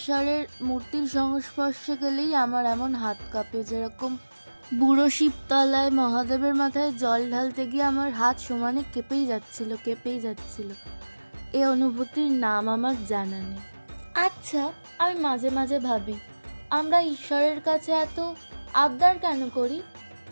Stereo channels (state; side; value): inverted; both; correlation -1.00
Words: মূর্তির সংস্পর্শে গেলেই আমার এমন হাত কাঁপে। যেরকম বুড়ো শিবতলায় মহাদেবের মাথায় জল ঢালতে গিয়ে আমার হাত সমানে কেঁপেই যাচ্ছিল। এই অনুভূতির নাম আমার জানা নেই। আচ্ছা, আমি মাঝে মাঝে ভাবি আমরা ঈশ্বরের কাছে এত আবদার কেন করি?